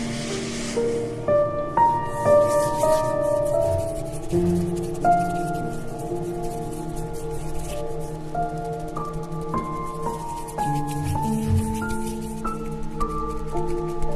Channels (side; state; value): both; identical; correlation 1.00